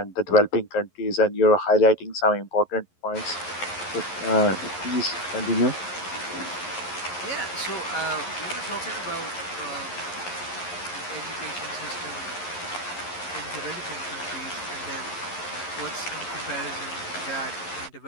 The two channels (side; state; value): right; late; 11 ms